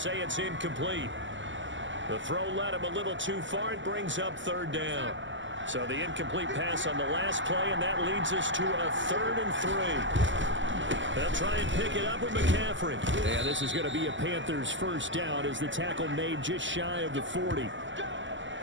it's incomplete. The throw led him a little too far. It brings up 3rd down. So the incomplete pass on the last play, and that leads us to a 3rd and 3. They'll try and pick it up with McCaffrey. And this is going to be a Panthers first down as the tackle made just shy of the 40.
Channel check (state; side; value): late; left; 0.54 ms